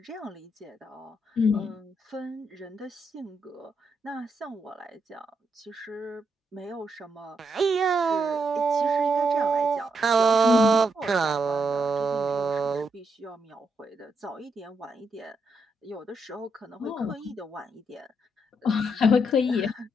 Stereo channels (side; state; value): both; normal; correlation 0.80